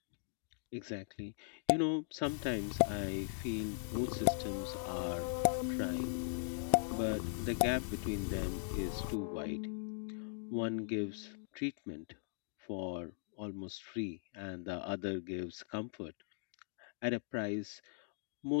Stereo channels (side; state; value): right; silent; digital silence